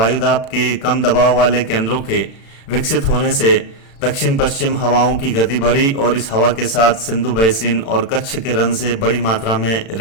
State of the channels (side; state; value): right; late; 36 ms